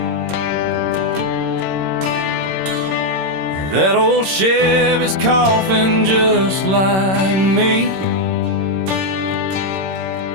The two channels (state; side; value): late; left; 26 ms